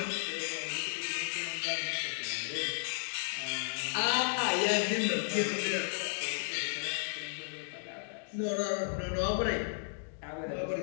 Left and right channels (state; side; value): silent; right; digital silence